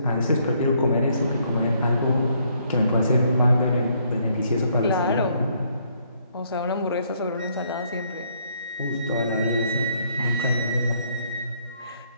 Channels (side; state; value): both; inverted; correlation -0.69